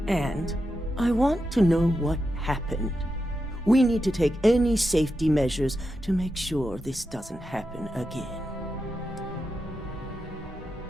And I want to know what happened. We need to take any safety measures to make sure this doesn't happen again.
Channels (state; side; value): normal; both; correlation 0.88